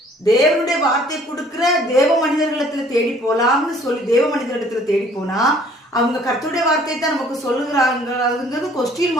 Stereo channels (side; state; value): both; normal; correlation 0.56